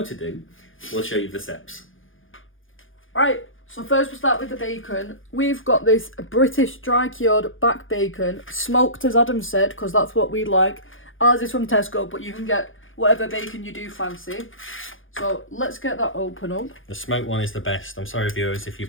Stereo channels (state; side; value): late; right; 0.58 ms